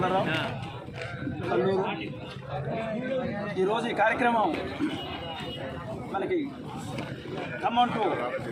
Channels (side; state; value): both; identical; correlation 1.00